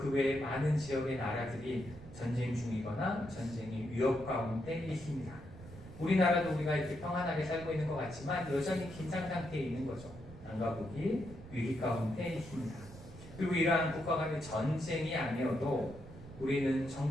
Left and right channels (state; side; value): noise; right; rumble, 16 dB below the sound